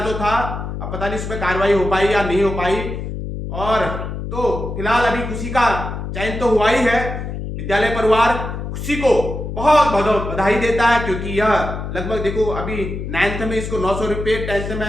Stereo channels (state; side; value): noise; left; hum, 6 dB below the sound